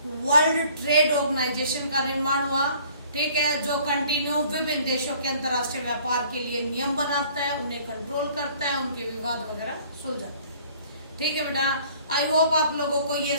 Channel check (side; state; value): both; inverted; correlation -0.55